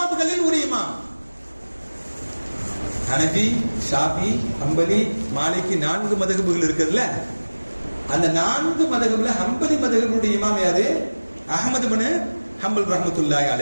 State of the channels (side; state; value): both; inverted; correlation -1.00